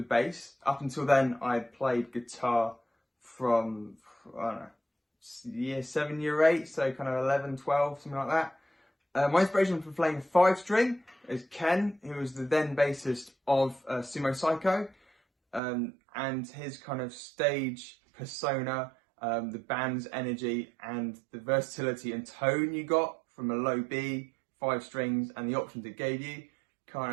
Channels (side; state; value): left; drops out; at 15.6 s